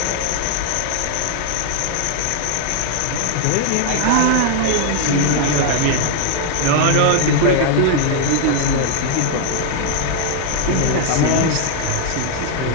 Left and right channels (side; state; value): both; different; correlation 0.00